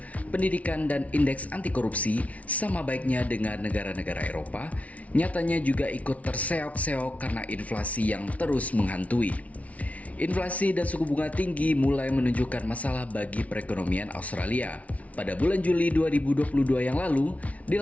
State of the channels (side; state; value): right; late; 0.067 ms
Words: pendidikan, dan indeks anti korupsi sama baiknya dengan negara-negara Eropa, nyatanya juga ikut terseok-seok karena inflasi yang terus menghantui. Inflasi dan suku bunga tinggi mulai menunjukkan masalah bagi perekonomian Australia. Pada bulan Juli 2022 yang lalu,